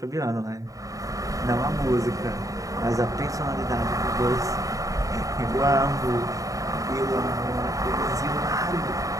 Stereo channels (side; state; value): left; late; 0.16 ms